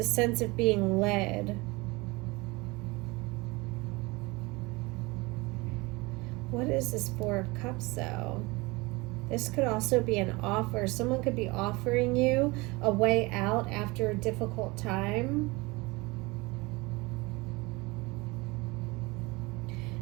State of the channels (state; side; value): quieter; left; 24.2 dB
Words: sense of being led. What is this Four of Cups, though? This could also be an offer. Someone could be offering you a way out after a difficult time.